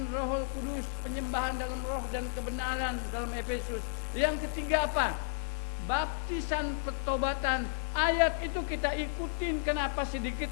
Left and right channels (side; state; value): right; silent; digital silence